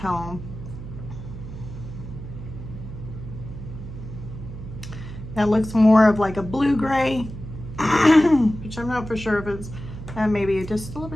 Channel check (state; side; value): noise; right; hum, 11 dB below the sound